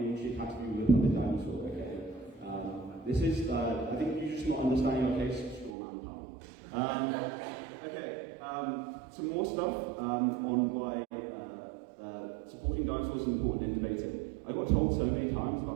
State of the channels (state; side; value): drops out; left; at 5.7 s